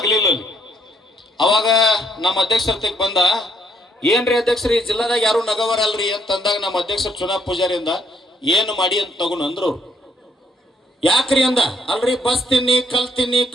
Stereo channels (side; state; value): both; normal; correlation 0.69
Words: ಅಲ್ಲಿ. ಅವಾಗ ನಮ್ಮ ಅಧ್ಯಕ್ಷರ ಬಂದ, ಏನ್ರಿ ಅಧ್ಯಕ್ಷರು ಈ ಜಿಲ್ಲಾದಾಗ ಯಾರು ನಗವರಲ್ರಿ ಅಂತಂದಾಗ ನಮ್ಮ ಅಧ್ಯಕ್ಷರು ಚುನಾವ್ ಪೂಜಾರಿಯಿಂದ ಏನು ಮಾಡಿ ಅಂತ ತಗೊಂಡು ಅಂದ್ರು. ಯಾಕ್ರಿ ಅಂದ, ಅಲ್ರಿ ಬಸ್ ತಿನ್ನಿ, ಕಲ್ ತಿನ್ನಿ,